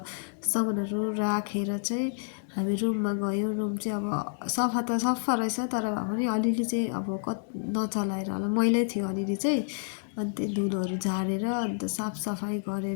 सामानहरु राखेर चाहिँ हामी रुममा गयौं। रुम चाहिँ अब सफा त सफा रहेछ, तर भए पनि अलिअलि चाहिँ अब नचलाएर होला, मैलै थियो अलिअलि चाहिँ। अनि त्यो धुलोहरु झारेर अन्त साफ सफाई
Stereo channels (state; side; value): silent; right; 58 dB below the other